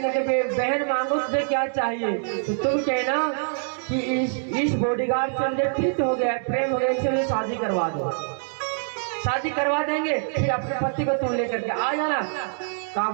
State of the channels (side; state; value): left; silent; digital silence